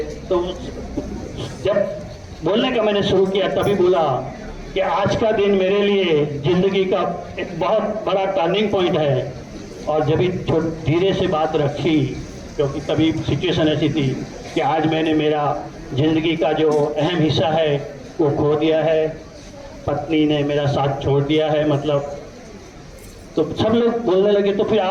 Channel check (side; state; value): both; identical; correlation 1.00